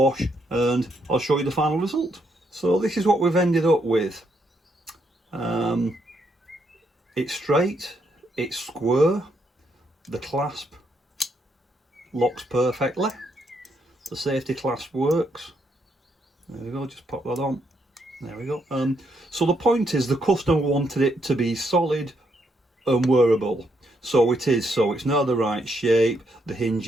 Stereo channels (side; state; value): both; normal; correlation 0.76